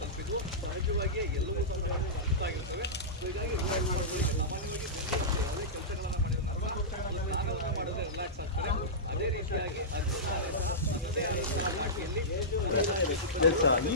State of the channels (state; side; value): normal; both; correlation -0.15